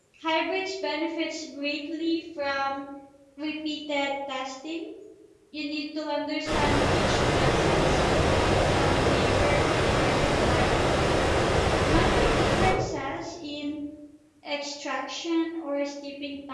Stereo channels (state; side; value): identical; both; correlation 1.00